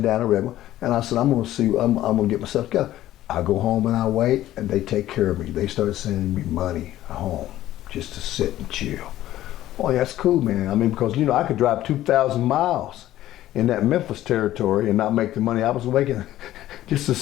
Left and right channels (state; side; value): quieter; right; 14.0 dB